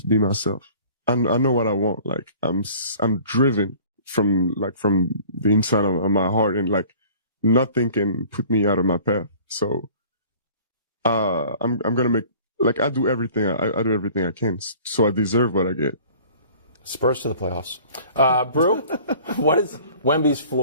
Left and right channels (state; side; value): inverted; both; correlation -0.48